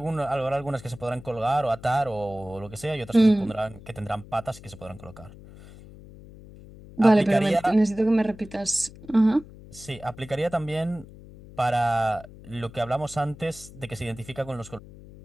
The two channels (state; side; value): noise; left; hum, 18 dB below the sound